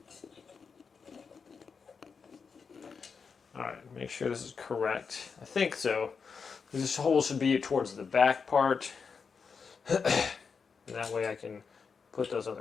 All right, make sure this is correct. I think so. This hole should be towards the back part. And that way I can put those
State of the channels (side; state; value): right; quieter; 5.6 dB